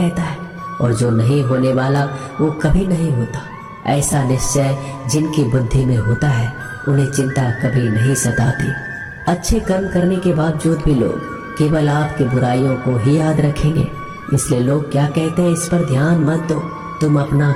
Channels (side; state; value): both; identical; correlation 1.00